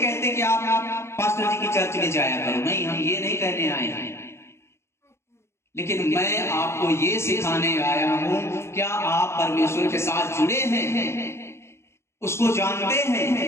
कि आप पास्टर जी की चर्च में जाया करो, नहीं, हम ये नहीं कहने आए हैं, लेकिन मैं आपको ये सिखाने आया हूं, क्या आप परमेश्वर के साथ जुड़े हैं? उसको जानते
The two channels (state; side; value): late; right; 0.13 ms